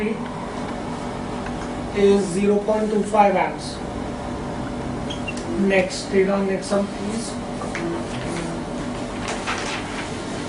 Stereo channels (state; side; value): identical; both; correlation 1.00